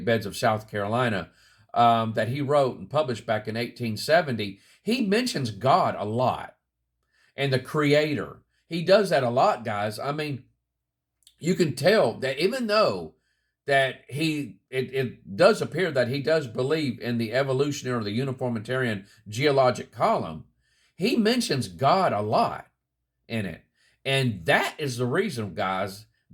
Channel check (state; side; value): identical; both; correlation 1.00